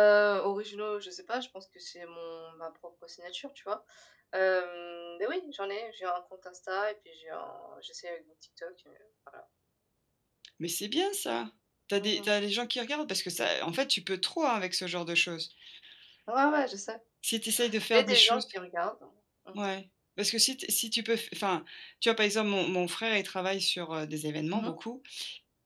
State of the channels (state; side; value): identical; both; correlation 1.00